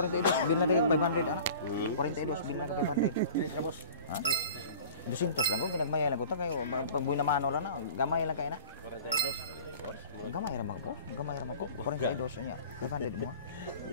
bil na kay 500 anak. 42 bil na kay 500. Bos. Ha? 200 lang ko ginagmayara lang ko ta kayo pag buy na mano lang na gamay lang kay na. 42 gamay ra magpo. Gamay ra magpo. 42 nya. 500 mo.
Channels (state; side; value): inverted; both; correlation -0.43